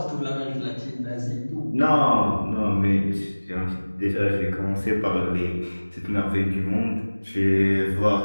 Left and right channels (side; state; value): both; inverted; correlation -1.00